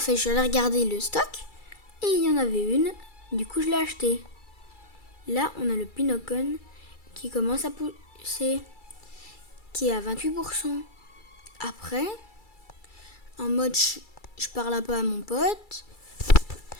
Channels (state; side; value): late; right; 2.3 ms